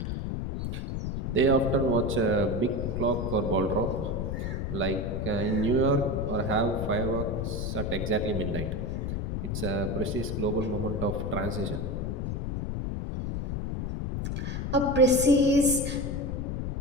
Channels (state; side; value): noise; left; rumble, 3 dB below the sound